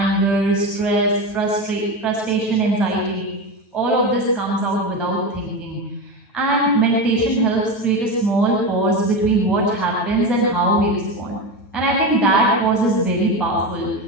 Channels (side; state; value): right; late; 9.2 ms